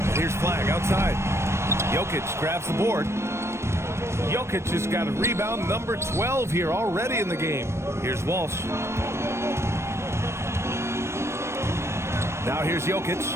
Here's Flag outside. Jokic grabs the board. Jokic has got a rebound number 12 here already in the game. Here's Walsh. Now here's Jokic.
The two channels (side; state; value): left; late; 0.13 ms